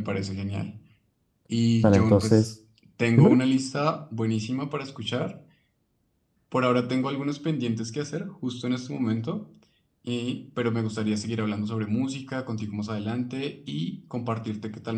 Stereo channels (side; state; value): both; identical; correlation 1.00